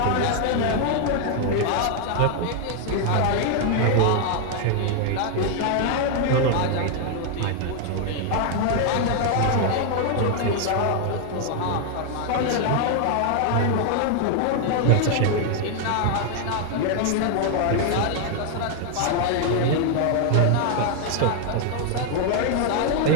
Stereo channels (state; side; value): different; both; correlation 0.00